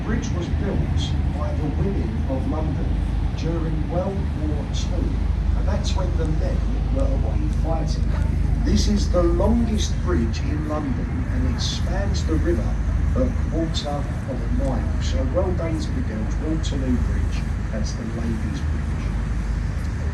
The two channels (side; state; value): both; identical; correlation 1.00